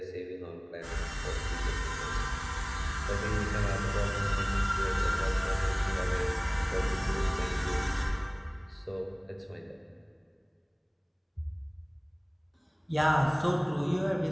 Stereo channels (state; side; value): identical; both; correlation 1.00